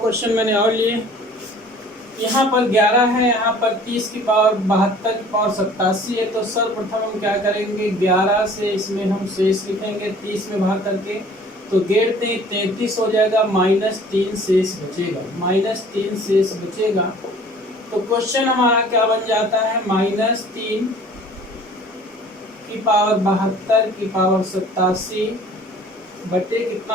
मैंने और लिए। यहाँ पर 11 है, यहाँ पर 30 की पावर 72 की पावर 87 है। तो सर्वप्रथम हम क्या करेंगे, 11 से इसमें हम शेष लिखेंगे 30 में भाग करके। तो 33 हो जाएगा, -3 शेष बचेगा, -3 शेष बचेगा। तो क्वेश्चन हमारा क्या बन जाता है, -3 की पावर 72 की पावर 87 बटे कितना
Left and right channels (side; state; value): both; normal; correlation 0.50